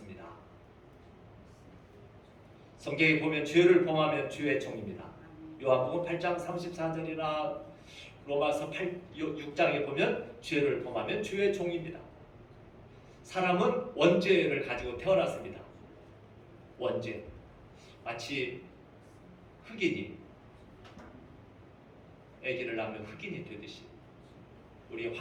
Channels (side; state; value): both; identical; correlation 1.00